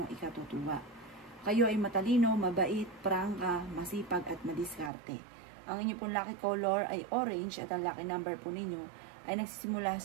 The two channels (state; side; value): drops out; left; at 4.9 s